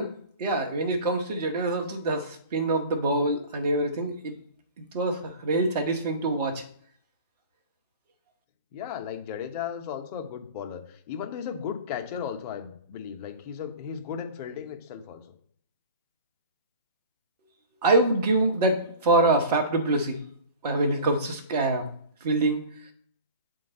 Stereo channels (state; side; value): inverted; both; correlation -0.37